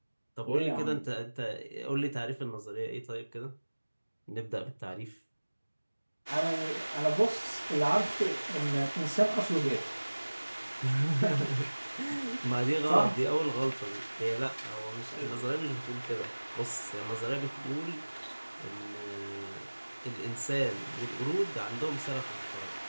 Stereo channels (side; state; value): both; inverted; correlation -1.00